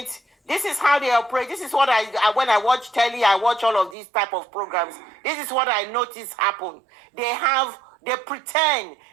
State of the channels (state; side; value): drops out; left; at 4.0 s